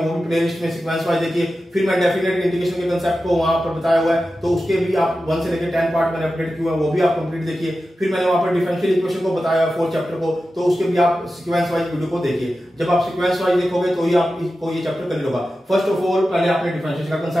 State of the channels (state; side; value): normal; both; correlation 0.93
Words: भी प्लेलिस्ट में सीक्वेंस वाइज देखिए। फिर मैं डेफिनेट इंटीग्रेशन के कंसेप्ट को वहां पर बताया हुआ है, तो उसके भी आप 1 से लेकर 10 पार्ट मैंने अपडेट किए हैं, वो भी आप कंप्लीट देखिए। फिर मैंने वहां पर डिफरेंशियल इक्वेशन को बताया है 4 चैप्टर को, तो उसके भी आप सीक्वेंस वाइज वीडियो को देखिए। जब आप सीक्वेंस वाइज देखोगे तो ही आपको ये चैप्टर क्लियर होगा। फर्स्ट ऑफ ऑल पहले आपने डिफरेंशिएशन का